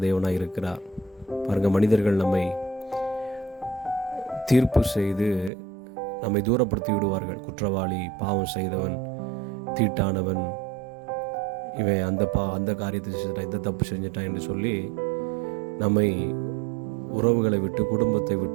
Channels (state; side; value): drops out; left; at 5.5 s